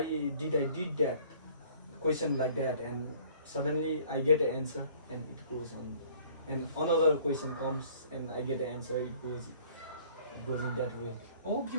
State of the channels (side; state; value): both; inverted; correlation -0.55